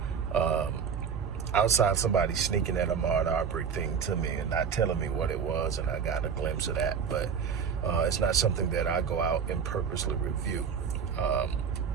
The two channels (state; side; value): quieter; left; 6.7 dB